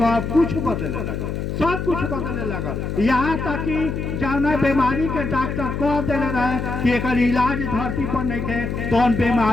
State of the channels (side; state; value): left; noise; hum, 4 dB below the sound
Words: कुछ बदलने लगा, सब कुछ बदलने लगा। यहाँ तक कि जाना बीमारी के डॉक्टर कह दिले रहे कि एक इलाज धरती पर नहीं थे तो